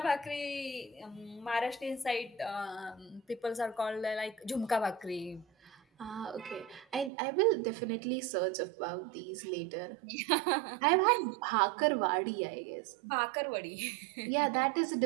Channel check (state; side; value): drops out; left; at 7.1 s